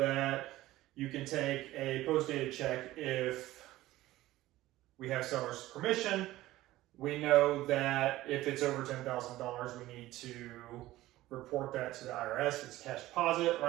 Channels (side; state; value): left; quieter; 16.4 dB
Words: you can take a post-dated check if we have seller's permission. We know that if it's over $10,000, we need to report that to the IRS. It's cash deposit,